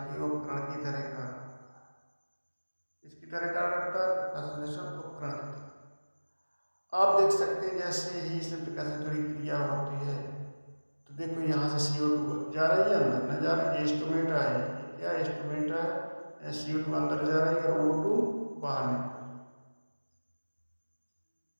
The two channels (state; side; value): inverted; both; correlation -1.00